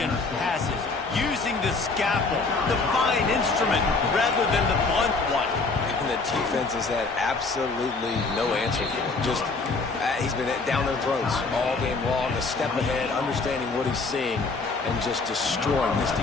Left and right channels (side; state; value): right; quieter; 3.9 dB